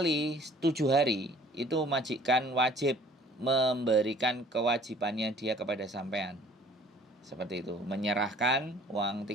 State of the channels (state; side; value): normal; both; correlation 0.53